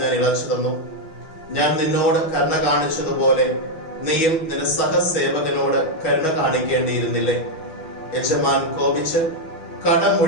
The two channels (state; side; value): late; right; 6.2 ms